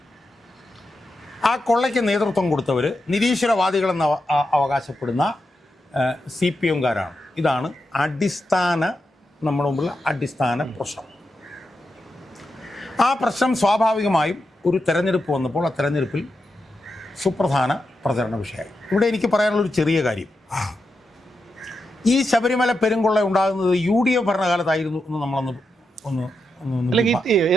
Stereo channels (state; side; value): normal; both; correlation 0.87